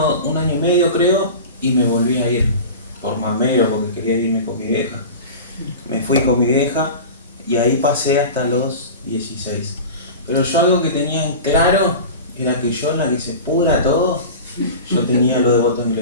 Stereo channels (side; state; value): both; inverted; correlation -0.33